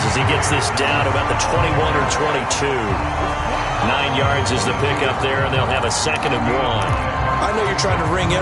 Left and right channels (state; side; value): identical; both; correlation 1.00